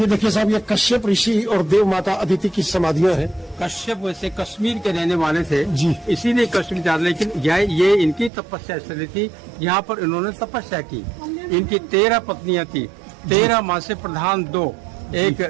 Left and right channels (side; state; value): left; drops out; at 8.3 s